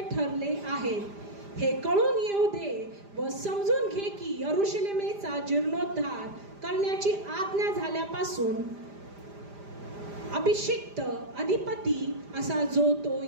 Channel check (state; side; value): late; left; 5.0 ms